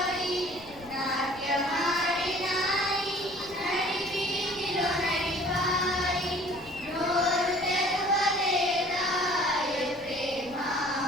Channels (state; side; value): noise; left; rumble, 21 dB below the sound